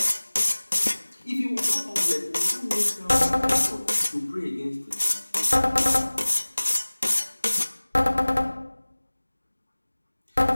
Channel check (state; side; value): inverted; both; correlation -1.00